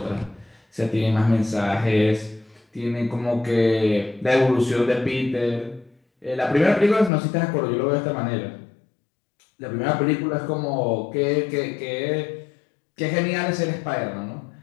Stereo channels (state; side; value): drops out; right; at 7.1 s